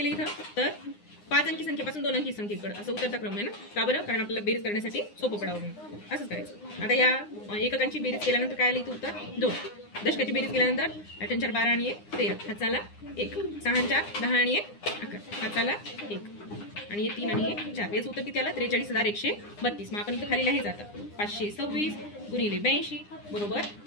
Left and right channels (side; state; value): right; late; 9.8 ms